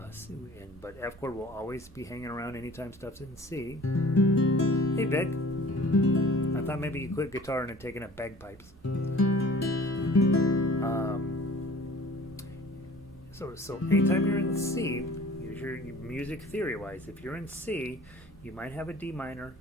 but F chord will always be hanging around anytime stuff's in C. Hey, Vic. I thought maybe you quit guitar and had taken up bagpipes. So anytime you're in C, use your music theory-wise. If you're in C, you might have a D minor,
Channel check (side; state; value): both; normal; correlation 0.47